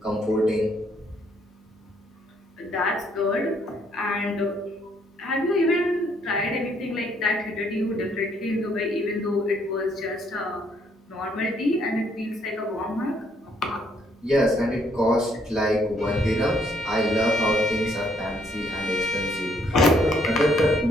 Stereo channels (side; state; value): both; normal; correlation 0.69